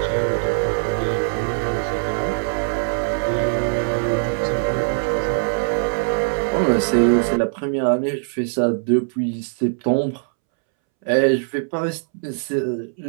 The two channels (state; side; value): silent; left; 65 dB below the other